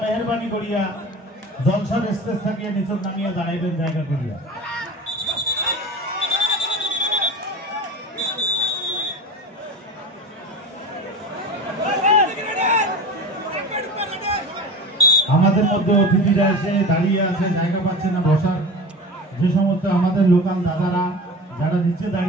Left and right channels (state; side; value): normal; both; correlation 0.33